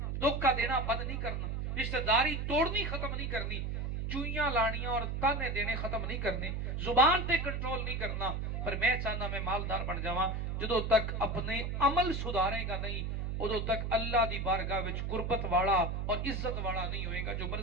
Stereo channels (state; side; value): noise; right; hum, 2 dB below the sound